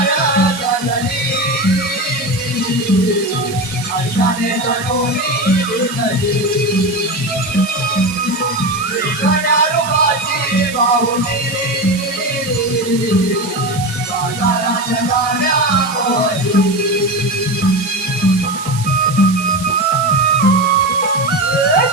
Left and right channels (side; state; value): right; noise; hiss, 12 dB below the sound